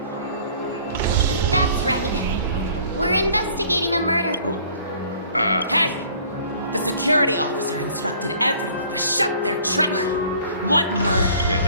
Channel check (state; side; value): inverted; both; correlation -0.53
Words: That's right. We're investigating a murder. Hey! The security officer instructed everyone to shut their trap. What murder?